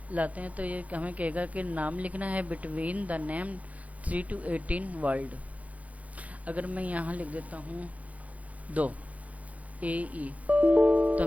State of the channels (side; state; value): left; late; 0.069 ms